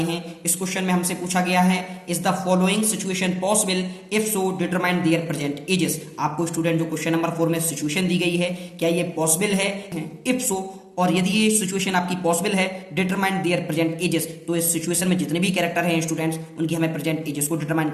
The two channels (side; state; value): both; identical; correlation 1.00